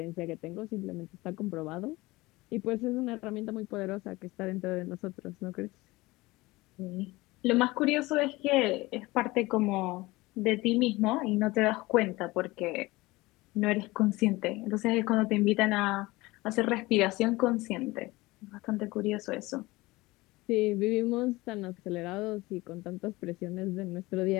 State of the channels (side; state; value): right; quieter; 20.9 dB